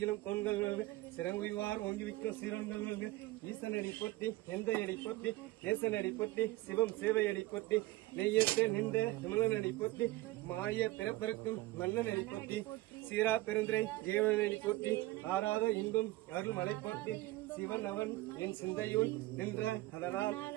கொண்கள் வாழ்க சிறங்குவிவார் ஓங்கிவிக்கும் சீரன்கள் வாழ்க ஈசனடி பொட்டி எந்த அடி பொட்டி ஏசனடி பொட்டி சிவம் சேவையடி பொட்டி நெய்யத்த நின்ற விமலனடி பொட்டி மாய பிறப்பிறக்கும் மன்னனடி பொட்டி சீரா பெருந்திரை தேவனடி பொட்டி ஆறாத இன்பம் அருள் மலை பொட்டி சிவன் அவன் என் சிந்தையுள் நின்ற அதனால்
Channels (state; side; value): quieter; left; 18.4 dB